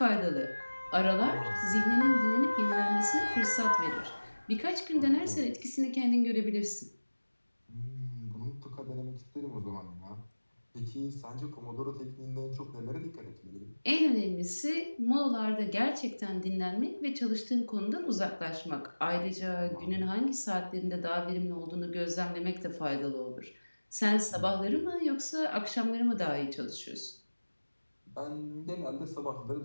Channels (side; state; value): both; inverted; correlation -1.00